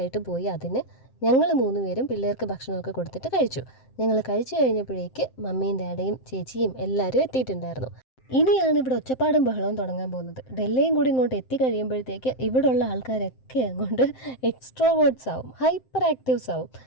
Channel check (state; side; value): late; right; 7.7 ms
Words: പോയി അതിന് ഞങ്ങൾ 3 പേരും പിള്ളേർക്ക് ഭക്ഷണമൊക്കെ കൊടുത്തിട്ട് കഴിച്ചു. ഞങ്ങൾ കഴിച്ചു കഴിഞ്ഞപ്പോഴേക്ക് മമ്മിയും ഡാഡിയും ചേച്ചിയും എല്ലാവരും എത്തിയിട്ടുണ്ടായിരുന്നു. ഇനിയാണ് ഇവിടെ ഒച്ചപ്പാടും ബഹളവും തുടങ്ങാൻ പോകുന്നത്. ഡൽഹിയും കൂടി ഇങ്ങോട്ട് എത്തിക്കഴിയുമ്പോഴത്തേക്ക് ഇവിടെയുള്ള ആൾക്കാരൊക്കെ അങ്ങോട്ട് എക്സ്ട്രോവേർട്സ് ആവും, ഹൈപ്പർ ആക്റ്റീവ്സ് ആവും.